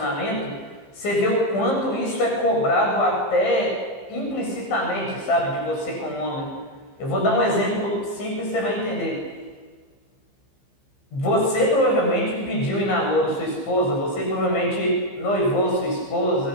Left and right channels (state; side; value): late; right; 15 ms